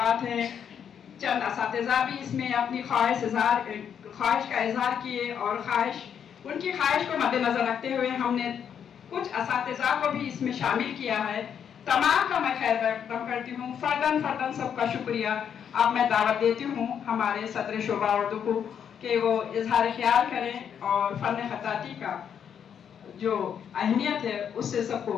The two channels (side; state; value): right; quieter; 8.2 dB